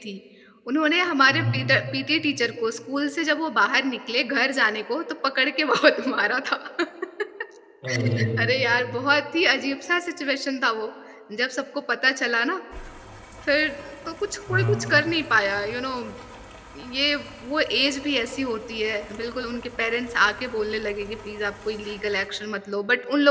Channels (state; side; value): identical; both; correlation 1.00